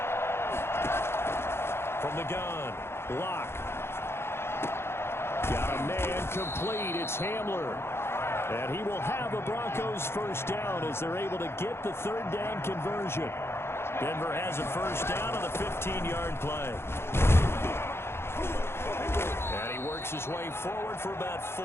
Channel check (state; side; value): late; right; 0.12 ms